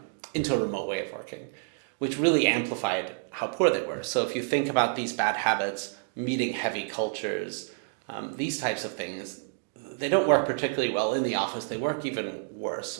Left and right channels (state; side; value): silent; left; 59 dB below the other